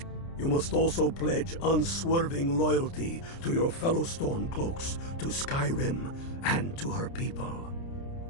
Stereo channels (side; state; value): right; late; 29 ms